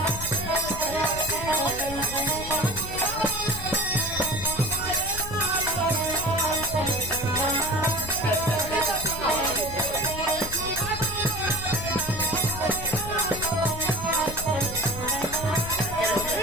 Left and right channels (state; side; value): noise; left; rumble, 10 dB below the sound